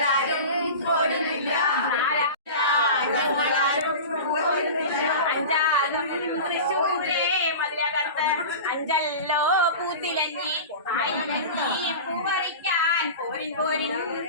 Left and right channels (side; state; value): both; inverted; correlation -0.31